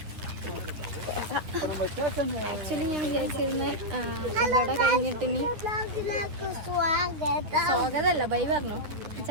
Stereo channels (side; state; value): left; late; 9.9 ms